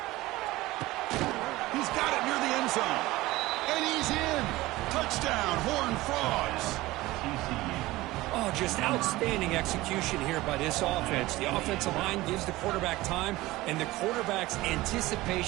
He's got it near the end zone. And he's in. Touchdown, Horned Frogs. Oh, just outstanding execution here by this offense. The offensive line gives the quarterback time, and the quarterback's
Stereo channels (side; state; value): left; quieter; 18.7 dB